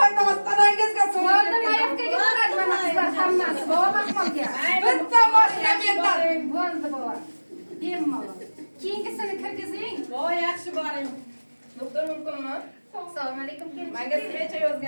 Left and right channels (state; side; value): inverted; both; correlation -1.00